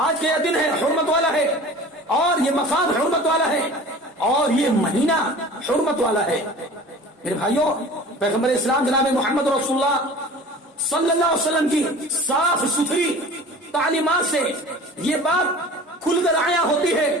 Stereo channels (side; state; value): both; normal; correlation 0.41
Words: دن ہے، حرمت والا ہے، اور یہ مقام حرمت والا ہے، اور یہ مہینہ حرمت والا ہے. میرے بھائیوں، پیغمبر اسلام جناب محمد رسول اللہ صلی اللہ علیہ وسلم کی صاف ستھری تعلیمات سے یہ بات کھل کر آیا ہوتی ہے